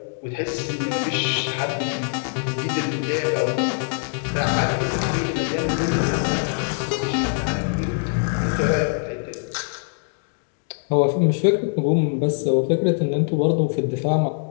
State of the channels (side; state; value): right; silent; digital silence